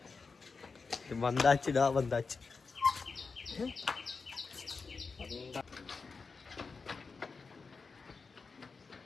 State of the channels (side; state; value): right; quieter; 4.7 dB